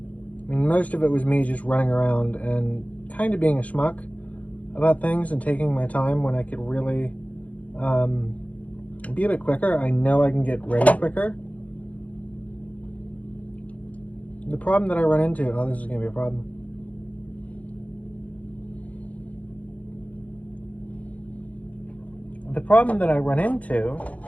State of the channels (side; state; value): right; late; 0.069 ms